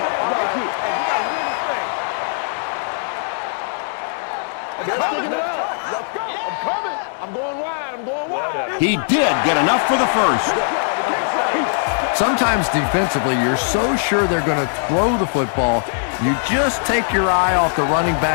Let's go. I'm coming. I'm going wide. I'm going wide. He did get enough for the first. Sometimes defensively, you're so sure they're going to throw the football, you just take your eye off the running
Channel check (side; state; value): right; silent; digital silence